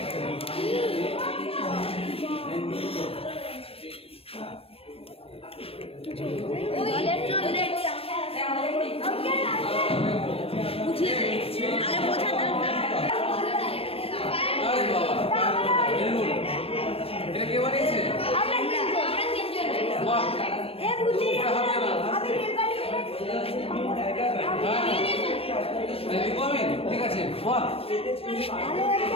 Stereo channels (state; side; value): late; right; 0.28 ms